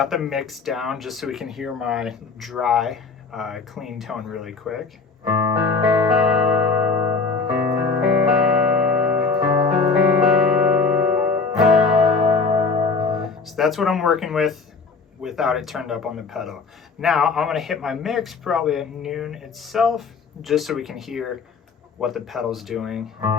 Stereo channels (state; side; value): quieter; right; 4.6 dB